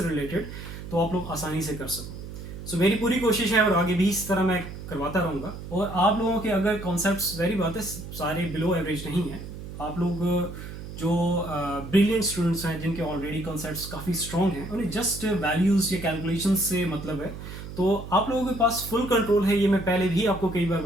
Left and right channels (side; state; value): right; noise; hum, 11 dB below the sound